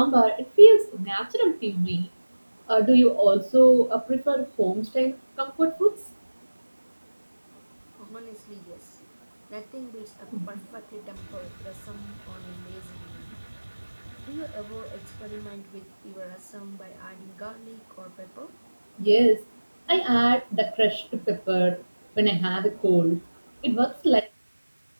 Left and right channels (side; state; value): both; inverted; correlation -1.00